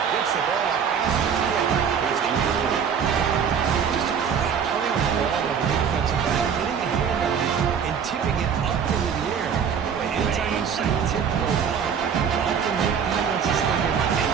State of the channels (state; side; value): quieter; left; 7.2 dB